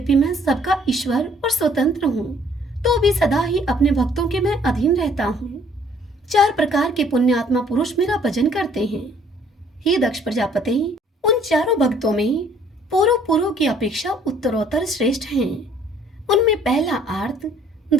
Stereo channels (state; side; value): normal; both; correlation 0.59